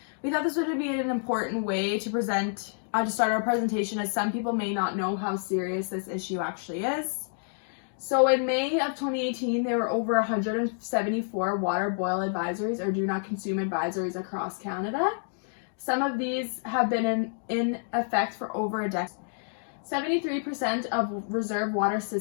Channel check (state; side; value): silent; right; digital silence